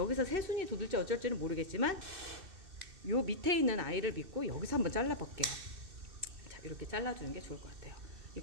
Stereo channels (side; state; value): left; late; 2.6 ms